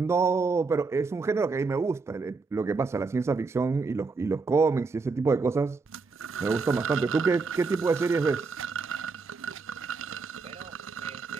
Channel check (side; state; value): left; quieter; 4.3 dB